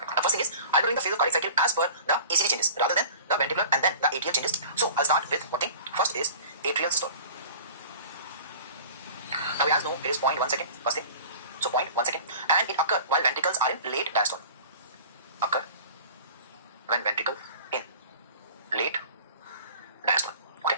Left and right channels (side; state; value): both; inverted; correlation -0.42